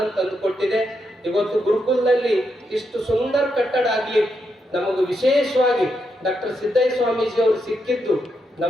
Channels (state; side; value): normal; both; correlation 0.82